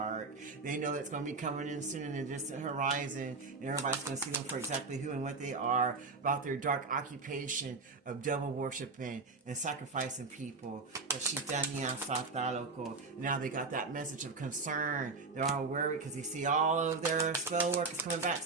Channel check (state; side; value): quieter; left; 4.0 dB